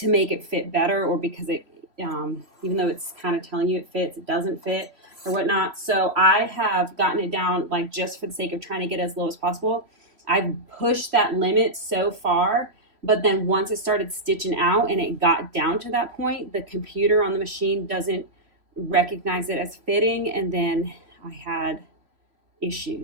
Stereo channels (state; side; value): late; left; 3.2 ms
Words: make it fit better, or because it, even though it's kind of telling you it fits, it doesn't fit or whatnot. So I have gotten it down, like just for the sake of trying to get as low as possible. I've pushed that limit so far. But then once it started stitching out and it got down to that point, the computer on the machine doesn't recognize it as fitting. And then I had